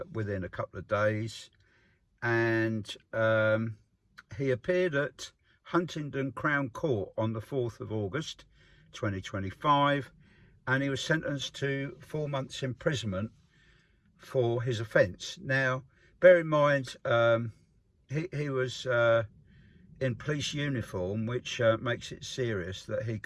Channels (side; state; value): both; identical; correlation 1.00